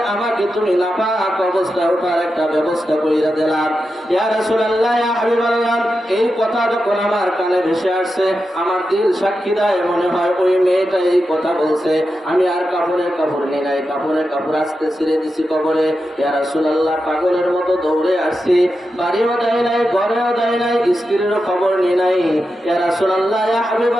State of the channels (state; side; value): normal; both; correlation 0.89